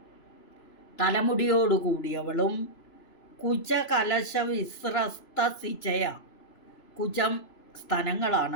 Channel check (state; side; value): late; right; 3.0 ms